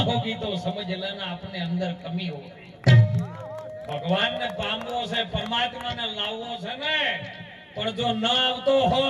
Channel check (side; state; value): both; identical; correlation 1.00